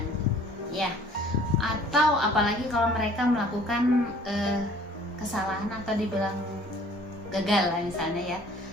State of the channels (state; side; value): normal; both; correlation 0.53